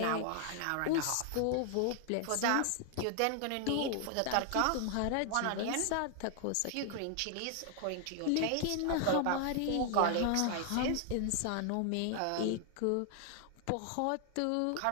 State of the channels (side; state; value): both; different; correlation 0.00